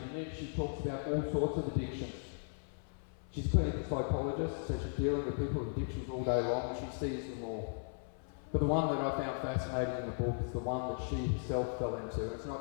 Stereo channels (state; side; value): silent; right; 53 dB below the other